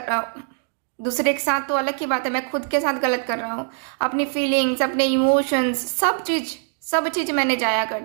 रहा हूँ। दूसरे के साथ तो अलग की बात है, मैं खुद के साथ गलत कर रहा हूँ। अपनी फीलिंग्स, अपने इमोशंस, सब चीज मैंने जाया कर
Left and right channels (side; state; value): left; silent; 59 dB below the other